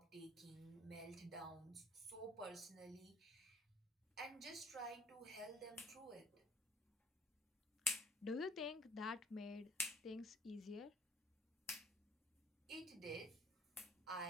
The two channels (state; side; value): normal; both; correlation 0.57